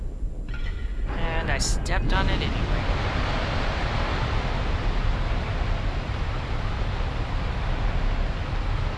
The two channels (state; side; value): identical; both; correlation 1.00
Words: And I stepped on it anyway.